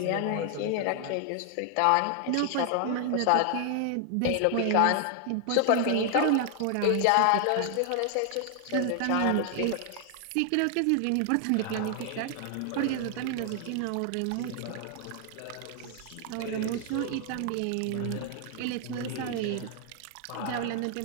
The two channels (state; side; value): different; both; correlation 0.00